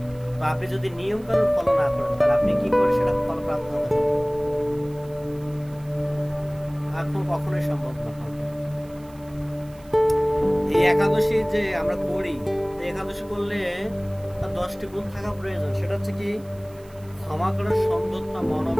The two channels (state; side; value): noise; right; hiss, 27 dB below the sound